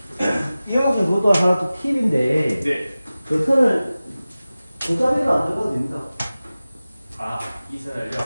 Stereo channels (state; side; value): inverted; both; correlation -0.97